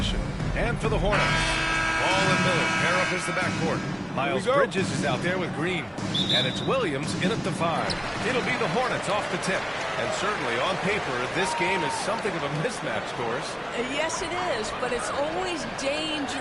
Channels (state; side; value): identical; both; correlation 1.00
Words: And for the Hornets, Ball and Miller pair up as the backcourt. Miles Bridges is out there with Green. And it's Williams in at the 5. It'll be the Hornets off the tip. And certainly on paper, this game is something of a mismatch, Doris. Yes, it is, but it's always